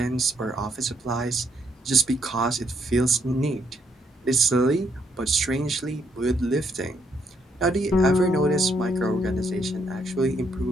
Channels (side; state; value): both; normal; correlation 0.73